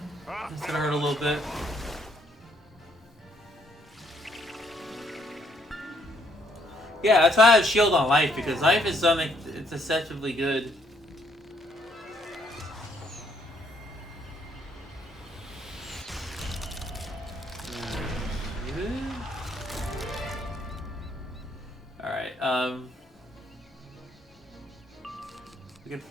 gonna hurt a little bit. Yeah, that's why I have shield on life, because life is something it's deceptively good. Alright, if we can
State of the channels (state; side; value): normal; both; correlation 0.69